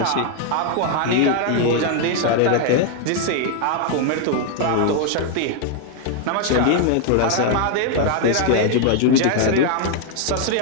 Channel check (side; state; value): both; different; correlation 0.00